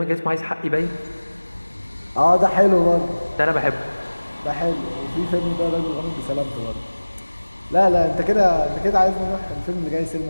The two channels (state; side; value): inverted; both; correlation -1.00